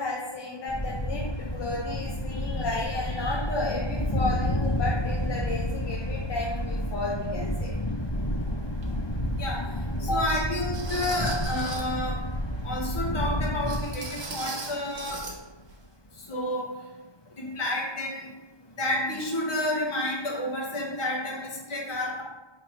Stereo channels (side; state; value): right; late; 1.2 ms